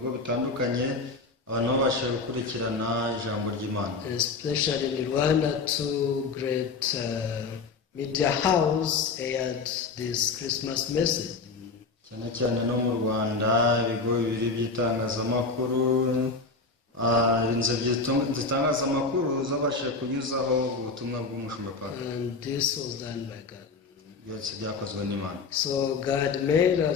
bitandukanye abantu babasha gukurikirana ijambo ry'Imana. Especially in Rwanda, two great media house aired this Christmas message. Cyane cyane no mu Rwanda ibigo bibiri by'itangazamakuru, inzego z'itangazamakuru zabashije kunyuzaho ubutumwa bw'Umushumba Park. And this was done by God. Byose byakozwe n'Imana. So God made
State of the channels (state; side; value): quieter; right; 4.2 dB